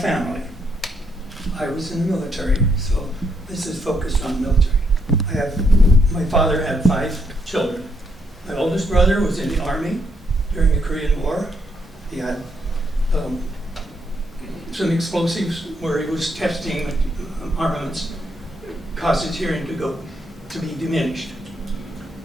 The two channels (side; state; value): both; normal; correlation 0.76